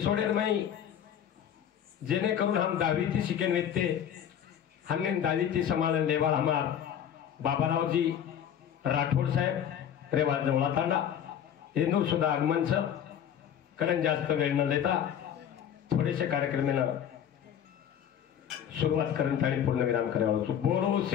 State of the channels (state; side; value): quieter; right; 9.3 dB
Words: में जेने करून हम दावीती शिकेन वेते हमने दावीती समालन लेवा हमार बाबाराव जी राठौड़ साहेब रेवा जवळा तांडा इंदूर सुद्धा आगमन छ कारण जास्त वेळ न देता थोडेसे कार्यक्रम सुरुवात करत आणि पूर्ण विराम करावा. बोलो